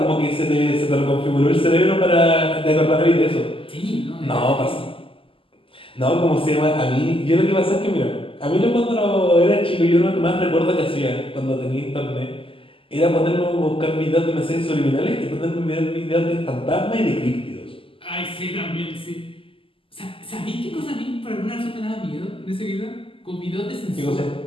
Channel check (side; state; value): right; late; 0.26 ms